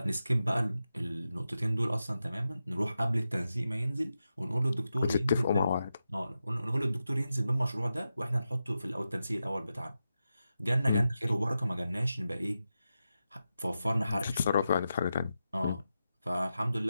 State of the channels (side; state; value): both; inverted; correlation -0.90